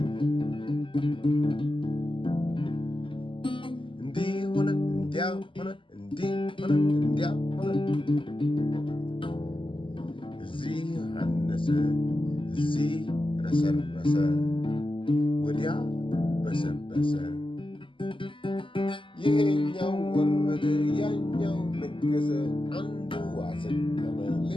እንዲህ ሆነ እንዲያ ሆነ እንዲህ ሆነ እንዲያ ሆነ እዚህ አነሰ እዚህ ረሰረሰ ወዲያ በሰበሰ ይሄኛው ወረደ ያኛው ነገሰ አንዱ አዘቀመ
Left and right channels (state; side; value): late; right; 0.25 ms